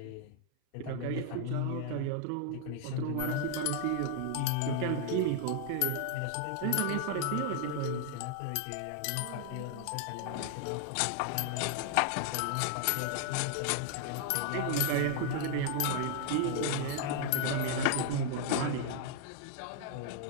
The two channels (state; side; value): different; both; correlation 0.00